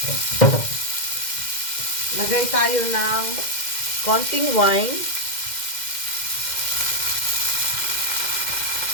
Lagay tayo ng konting wine.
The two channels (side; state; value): right; late; 2.1 ms